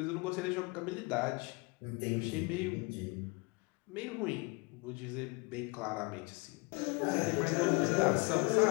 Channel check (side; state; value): right; quieter; 28.2 dB